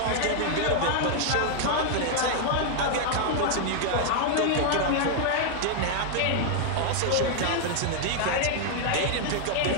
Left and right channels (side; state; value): both; different; correlation 0.00